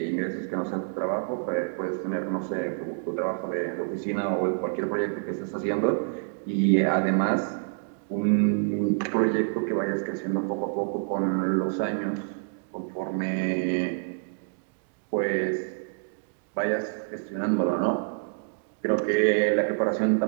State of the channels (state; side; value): silent; left; digital silence